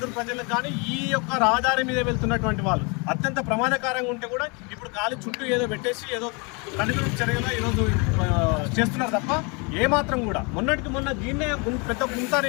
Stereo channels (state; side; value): quieter; right; 31.6 dB